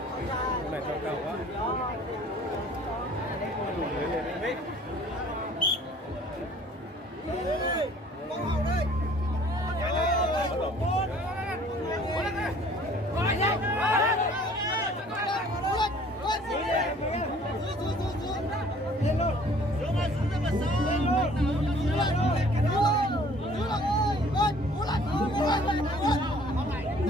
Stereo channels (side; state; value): both; normal; correlation 0.54